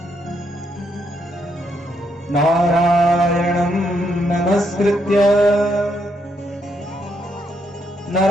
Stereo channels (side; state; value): both; normal; correlation 0.76